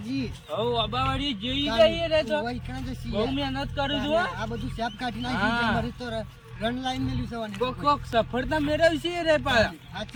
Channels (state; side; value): identical; both; correlation 1.00